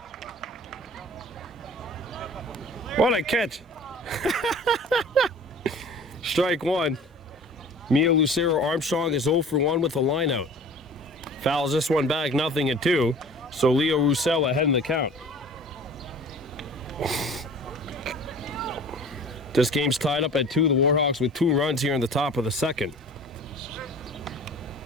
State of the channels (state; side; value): normal; both; correlation 0.44